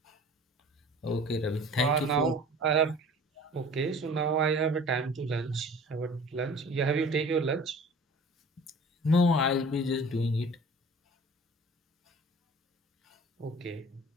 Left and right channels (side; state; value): both; normal; correlation 0.44